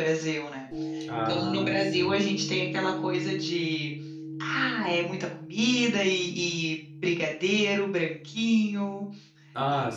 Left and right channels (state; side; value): identical; both; correlation 1.00